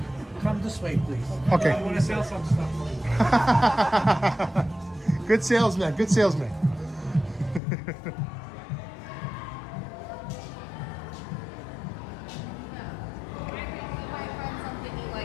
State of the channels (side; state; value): right; drops out; at 7.6 s